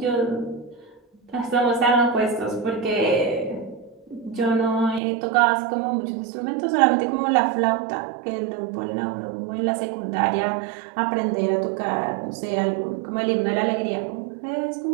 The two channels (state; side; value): drops out; left; at 5.0 s